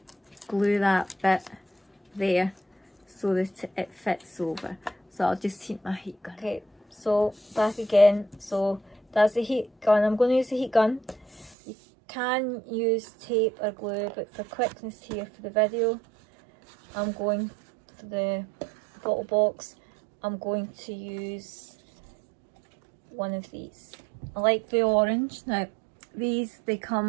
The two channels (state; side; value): drops out; left; at 11.6 s